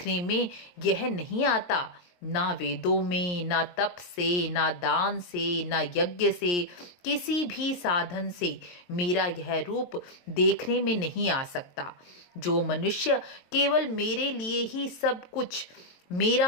में यह नहीं आता, ना वेदों में, ना तप से, ना दान से, ना यज्ञ से, किसी भी साधन से मेरा यह रूप देखने में नहीं आ सकता। जो मनुष्य केवल मेरे लिए ही सब कुछ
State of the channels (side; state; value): right; late; 22 ms